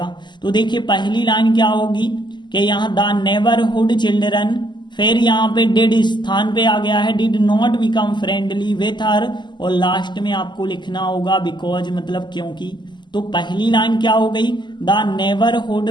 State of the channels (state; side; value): late; right; 0.21 ms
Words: तो देखिए पहली लाइन क्या होगी कि यहाँ द नेबरहुड चिल्ड्रन, फिर यहाँ पे डिड स्थान पे आ गया है, did not become friendly with her, और लास्ट में आपको लिखना होगा बिकॉज, मतलब क्योंकि। तो पहली लाइन क्या हो गई, the neighbourhood